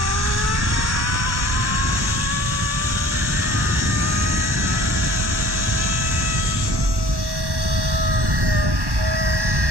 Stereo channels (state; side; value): late; left; 1.1 ms